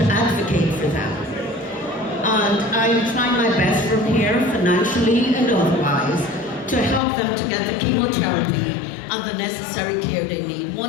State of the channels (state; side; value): drops out; right; at 7.0 s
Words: advocate for them. And I'm trying my best from here, financially and otherwise, to help them to get the chemotherapy and the necessary care they need.